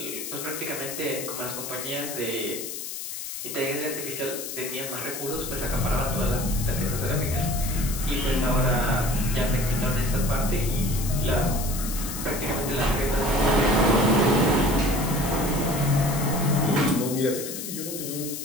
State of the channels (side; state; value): left; noise; hiss, 7 dB below the sound